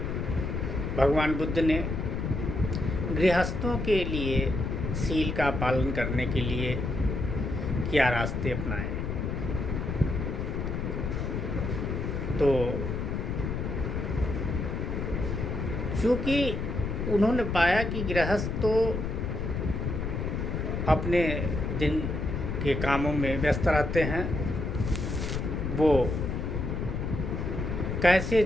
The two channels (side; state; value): left; noise; rumble, 2 dB below the sound